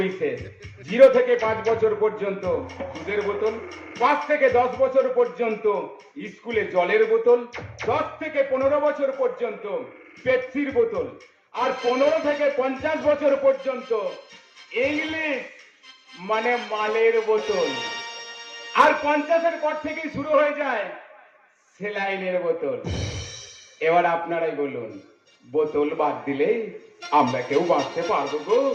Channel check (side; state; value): both; identical; correlation 1.00